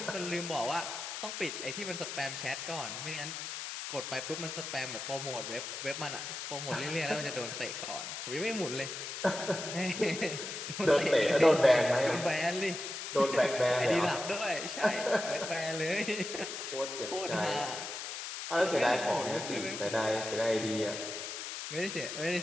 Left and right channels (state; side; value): noise; left; hiss, 6 dB below the sound